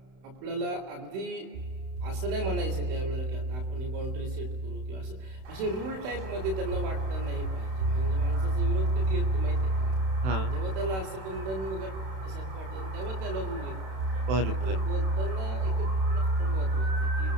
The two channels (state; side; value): late; left; 31 ms